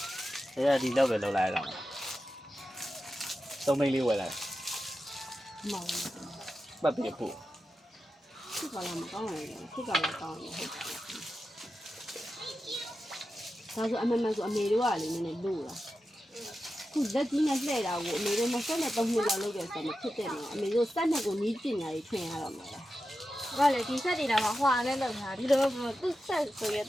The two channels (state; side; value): normal; both; correlation 0.91